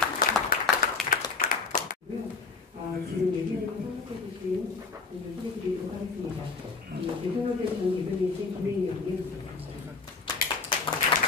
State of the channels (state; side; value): quieter; right; 4.6 dB